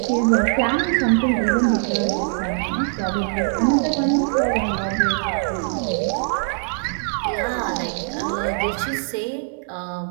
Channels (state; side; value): silent; left; digital silence